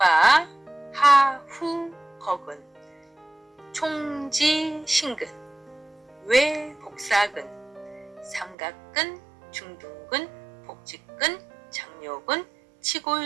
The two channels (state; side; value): drops out; left; at 8.6 s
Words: 하후 거근, 총지신근, 외복사근, 삼각근, 중둔근, 복직근, 장요근,